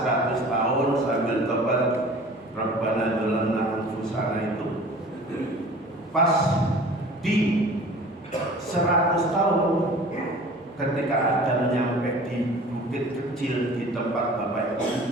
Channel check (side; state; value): both; normal; correlation 0.44